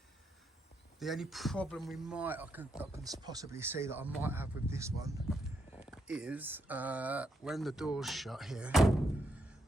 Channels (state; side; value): normal; both; correlation 0.79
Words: the only problem I can possibly see that I might have with this one is when the door's shut here,